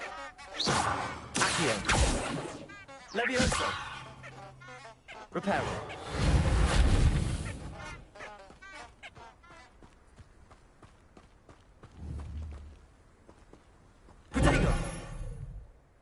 Accio. Levioso. Reparo. Protego.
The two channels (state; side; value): identical; both; correlation 1.00